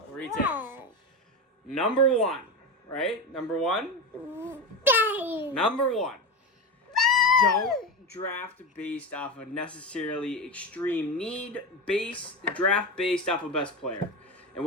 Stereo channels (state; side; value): normal; both; correlation 0.20